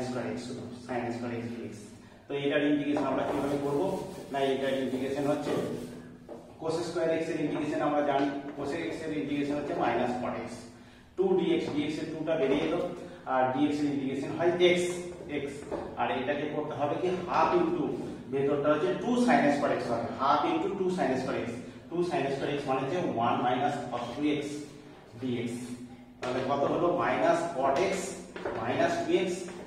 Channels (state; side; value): identical; both; correlation 1.00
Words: square x শুধু sin square x dx। তো এটার ইন্টিগ্রেশন আমরা কিভাবে করব না, এটার ইন্টিগ্রেশন হচ্ছে cos square x এর ইন্টিগ্রেশন আমরা জানি, cos x এর ইন্টিগ্রেশন হচ্ছে minus cot x 2 dx, dx এর 2টা বেরিয়ে এলো, আর dx এর ইন্টিগ্রেশন হয় x x, আর এটাকে করতে হবে কি হাফ ইনটু ভেতরটা হচ্ছে 2 sin square x হবে, half into 2 sin square x, 2 sin square x মানে হচ্ছে 1 মাইনাস cos 2x dx। তাহলে কত হলো minus cot x minus 2x